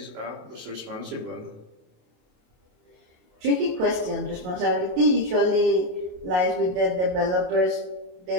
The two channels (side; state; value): left; late; 28 ms